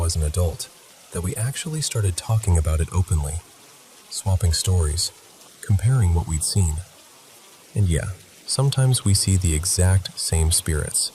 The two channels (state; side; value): identical; both; correlation 1.00